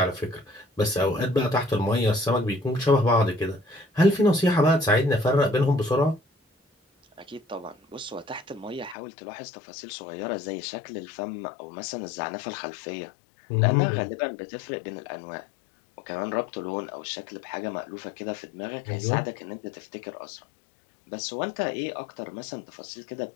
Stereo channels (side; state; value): right; drops out; at 9.0 s